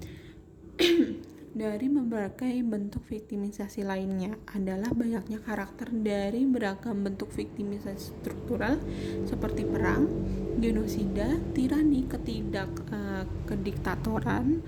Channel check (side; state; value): both; identical; correlation 1.00